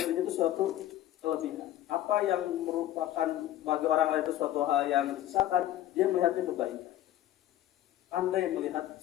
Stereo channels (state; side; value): quieter; right; 13.3 dB